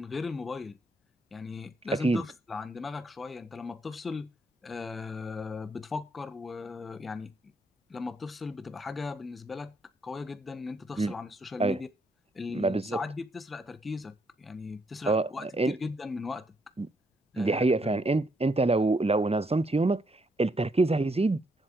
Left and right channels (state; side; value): normal; both; correlation 0.74